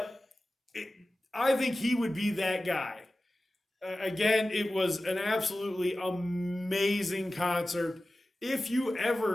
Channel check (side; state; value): both; normal; correlation 0.95